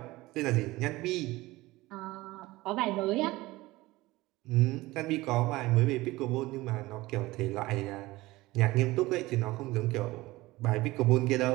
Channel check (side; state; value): left; quieter; 19.5 dB